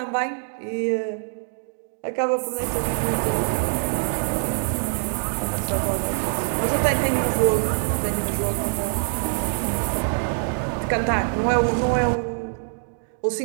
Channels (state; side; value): silent; left; digital silence